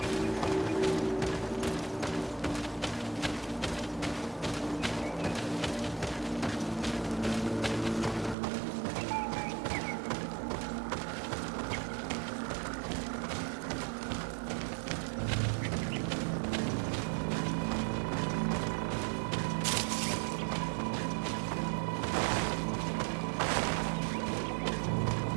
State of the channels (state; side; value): drops out; left; at 8.3 s